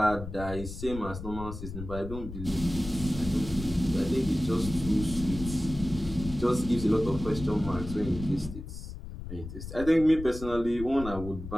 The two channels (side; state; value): left; noise; rumble, 10 dB below the sound